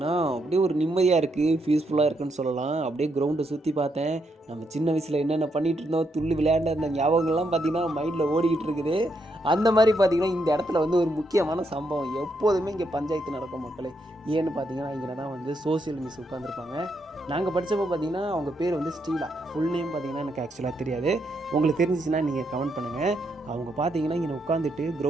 அப்படியே ஒரு நிம்மதியாக இருக்குது, பீஸ்ஃபுல்லாக இருக்குன்னு சொல்லலாம். அப்படியே கிரவுண்டை சுற்றி பார்த்தேன். நம்ம சின்ன வயசில் என்னென்ன பண்ணிகிட்டு இருந்தோம், துள்ளி விளையாண்ட அந்த ஞாபகங்கள்லாம் பார்த்திங்கன்னா மைண்டில் ஓடிக்கிட்டு இருக்குது. அந்த மாதிரி பார்த்திங்கன்னா இந்த இடத்துல வந்து ஒரு முக்கியமான சம்பவம். எப்போதுமே இங்கே பஞ்சாயத்து நடக்கும் மக்களே. ஏன்னு பார்த்தீங்கன்னா இங்கே தான் வந்து சோசியல் மிஸ் உட்காந்துருப்பாங்க. நாங்கள் படித்தப்போ பார்த்தீங்கன்னா அவங்க பேர் வந்து ஸ்டீலா. ஃபுல் நேம் பார்த்தீங்கன்னா எனக்கு ஆக்சுவலாக தெரியாது. உங்களுக்கு தெரிஞ்சிச்சுன்னா நீங்கள் கமெண்ட் பண்ணுங்கள். அவங்க பார்த்தீங்கன்னா இங்கே உட்காந்துட்டு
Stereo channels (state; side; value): normal; both; correlation 0.78